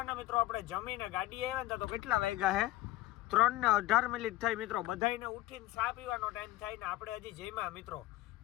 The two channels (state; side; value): quieter; right; 17.1 dB